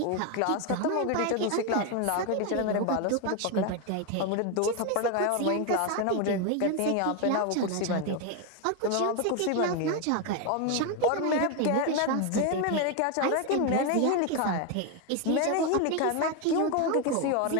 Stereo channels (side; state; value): both; different; correlation 0.01